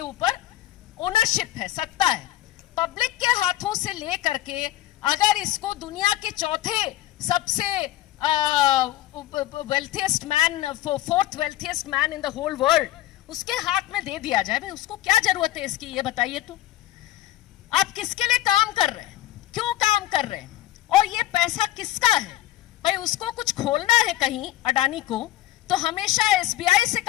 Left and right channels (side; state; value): right; quieter; 14.8 dB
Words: ऊपर ओनरशिप है, सत्ता है। पब्लिक के हाथों से ले करके अगर इसको दुनिया के चौथे सबसे wealthiest man, fourth wealthiest man in the whole world, उसके हाथ में दे दिया जाए, भाई उसको क्या जरूरत है इसकी, ये बताइए। तो आप किसके लिए काम कर रहे हैं, क्यों काम कर रहे हैं, और ये पैसा किसका है? भाई उसको कुछ खोलना है कहीं अडानी को, तो हमेशा एसबीआई से